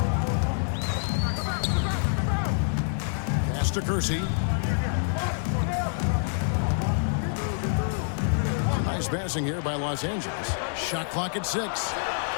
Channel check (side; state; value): right; silent; digital silence